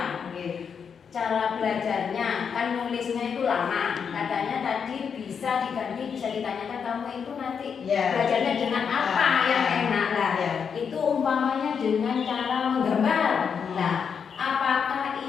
Cara belajarnya kan nulisnya itu lama. Katanya tadi bisa diganti, bisa ditanyakan kamu itu nanti belajarnya dengan apa yang enak lah. Itu umpamanya dengan cara menggambar. Nah, apakah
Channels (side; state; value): right; quieter; 6.7 dB